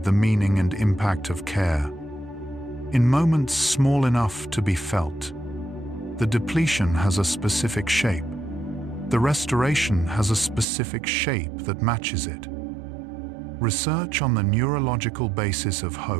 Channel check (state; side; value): drops out; left; at 10.7 s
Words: the meaning and impact of care. In moments small enough to be felt, the depletion has a specific shape. The restoration has a specific shape that matches it. Research on the neurological basis of